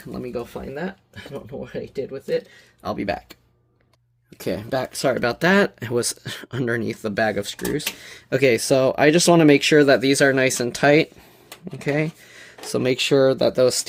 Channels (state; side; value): identical; both; correlation 1.00